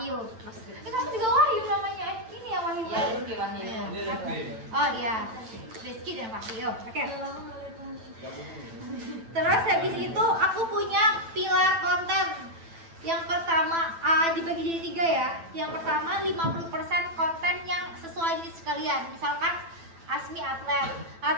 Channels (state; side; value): late; left; 9.0 ms